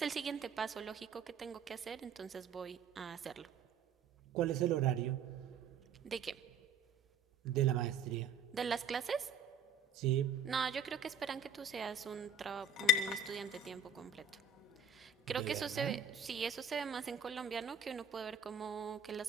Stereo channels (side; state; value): left; quieter; 3.9 dB